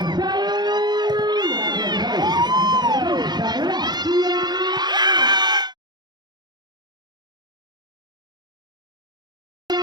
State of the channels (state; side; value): late; left; 0.21 ms